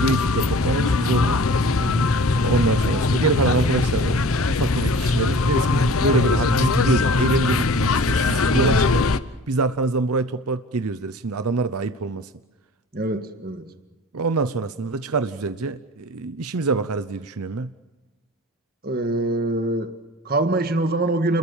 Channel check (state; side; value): normal; both; correlation 0.43